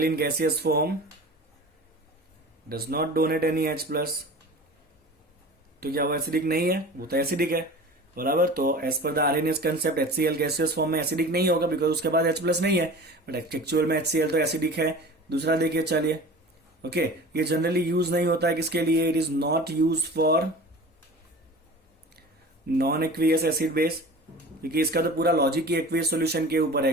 in gaseous form does not donate any H+, तो क्या वो एसिडिक नहीं है, वो तो एसिडिक है, बराबर। तो as per the Arrhenius concept HCl gaseous form में एसिडिक नहीं होगा, बिकॉज उसके बाद H+ नहीं है, बट एक्चुअल में HCl तो एसिडिक है। दूसरा देखिए, चलिए ओके, ये जनरली यूज नहीं होता है किसके लिए, it is not use for non aqueous acid base, क्योंकि इसका तो पूरा लॉजिक ही एक्वियस सॉल्यूशन के ऊपर है।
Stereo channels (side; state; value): both; normal; correlation 0.38